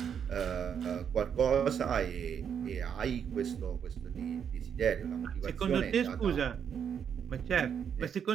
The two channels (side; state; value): left; quieter; 7.8 dB